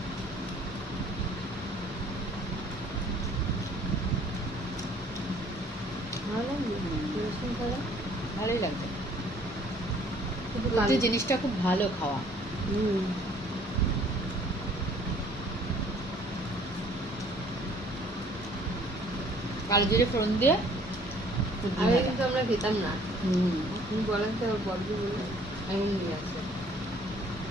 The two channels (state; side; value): normal; both; correlation 0.57